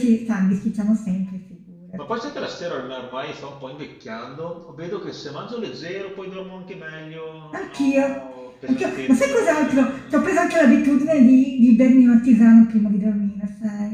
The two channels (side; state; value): both; identical; correlation 1.00